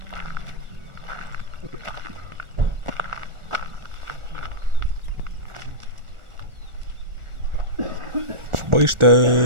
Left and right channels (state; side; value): late; left; 1.4 ms